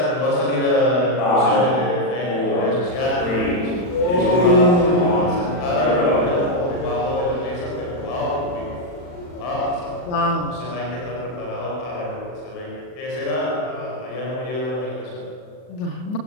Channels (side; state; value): right; late; 40 ms